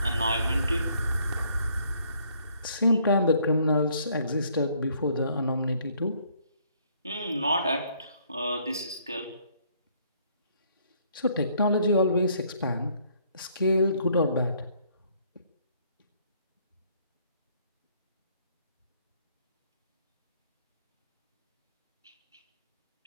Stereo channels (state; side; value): inverted; both; correlation -0.65